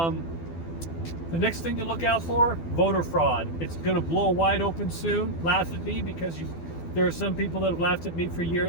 next thing to look out for, voter fraud. It's going to blow wide open soon. Laugh at me because there are some people that have laughed at me for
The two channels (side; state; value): right; late; 12 ms